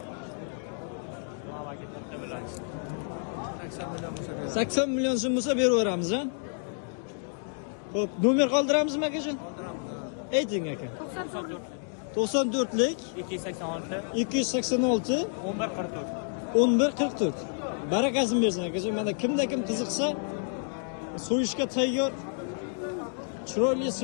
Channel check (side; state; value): right; silent; 58 dB below the other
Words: 80 million so'm bo'lsa beraveramiz, ha? Xo'p, nomer qoldiramizmi akajon? Qoldiramiz. Ayting aka. 94lik 286 1144. Barakasini bersin akajon. Mana kimda kim qiziqsa, so'yishga tayyor chiroyli